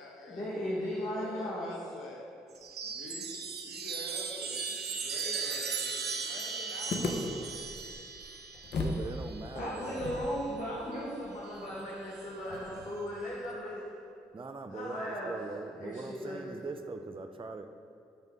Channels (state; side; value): normal; both; correlation 0.57